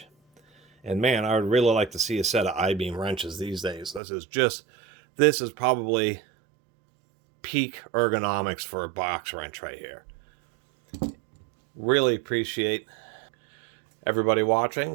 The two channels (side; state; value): left; drops out; at 4.0 s